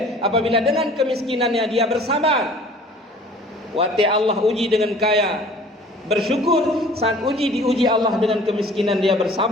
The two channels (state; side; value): normal; both; correlation 0.49